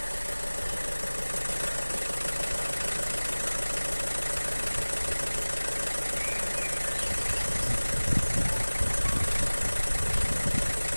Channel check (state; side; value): inverted; both; correlation -1.00